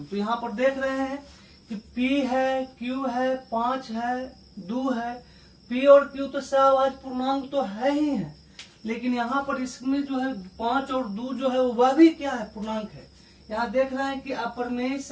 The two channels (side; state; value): both; identical; correlation 1.00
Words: तो यहाँ पर देख रहे हैं कि p है, q है, 5 है, 2 है, p और q तो सहभाज्य पूर्णांक तो है ही है, लेकिन यहाँ पर इसमें जो है 5 और 2 जो है वह भी क्या है, पूर्णांक है। यहाँ देख रहे हैं कि अपरिमेय